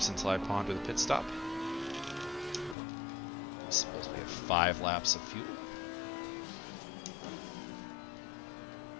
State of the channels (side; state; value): right; drops out; at 2.8 s